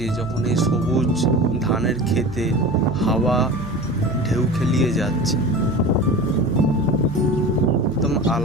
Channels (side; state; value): right; noise; hum, 15 dB below the sound